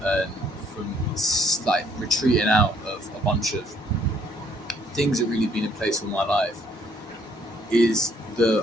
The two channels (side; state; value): both; normal; correlation 0.65